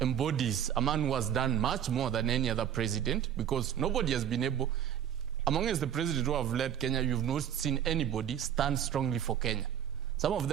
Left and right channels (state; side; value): quieter; left; 9.6 dB